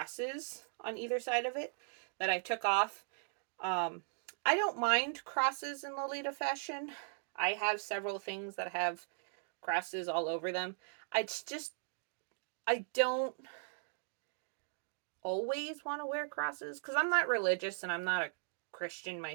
on either side of it that I took off. I don't mind crosses in Lolita fashion. I have several things that have crosses all over them. I don't always want to wear crosses because I'm not religious and I'm not a Christian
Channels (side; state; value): left; silent; digital silence